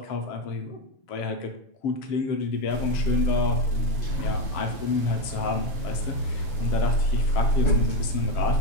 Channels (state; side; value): late; right; 6.9 ms